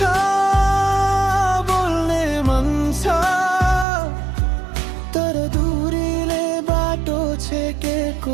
बोल्ने मन छ, तर दूरीले बाटो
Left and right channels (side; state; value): left; drops out; at 3.9 s